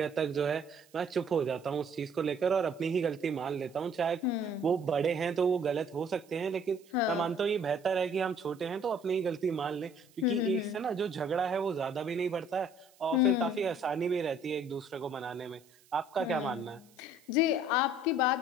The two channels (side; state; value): right; noise; hiss, 29 dB below the sound